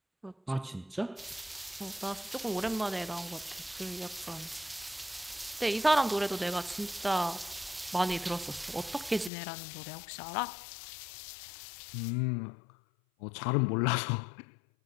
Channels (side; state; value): right; drops out; at 9.3 s